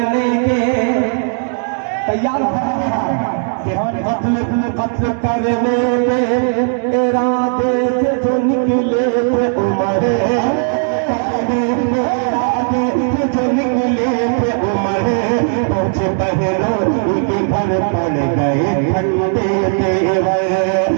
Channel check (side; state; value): left; silent; 61 dB below the other